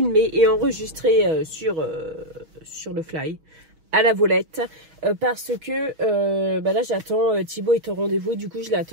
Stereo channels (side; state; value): left; late; 6.2 ms